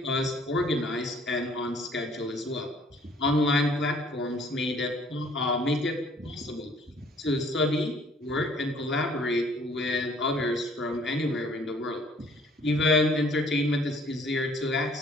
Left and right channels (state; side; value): normal; both; correlation 0.58